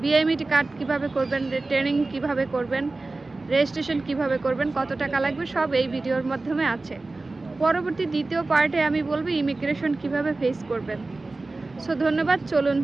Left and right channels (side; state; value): left; quieter; 3.3 dB